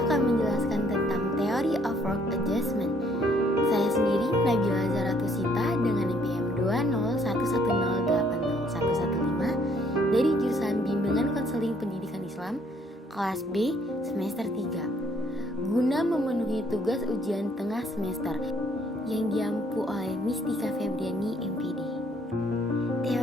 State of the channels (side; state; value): both; normal; correlation 0.65